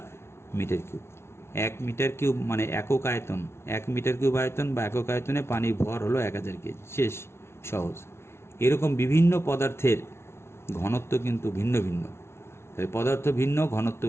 metre cube. 1 metre cube মানে একক আয়তন, 1 মিটার কিউব আয়তন বা একক আয়তনে পানির ভর হলো 1000 কেজি, শেষ, সহজ। এরকম বিভিন্ন পদার্থের ঘনত্ব কিন্তু ভিন্ন ভিন্ন, তাই পদার্থ ভিন্ন, ঘনত্ব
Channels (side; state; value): right; late; 0.12 ms